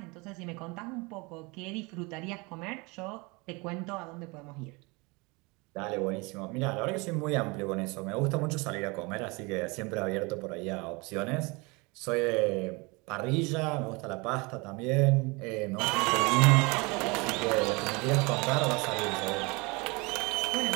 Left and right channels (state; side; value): quieter; left; 27.1 dB